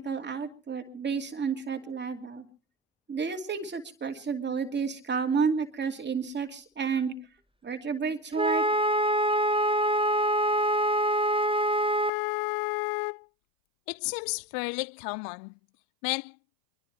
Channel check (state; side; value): drops out; right; at 12.1 s